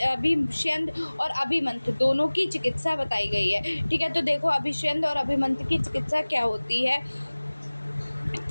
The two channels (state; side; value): inverted; both; correlation -1.00